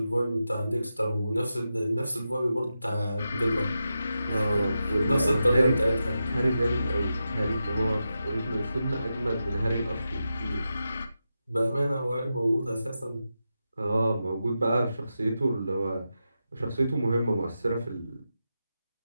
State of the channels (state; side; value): inverted; both; correlation -0.89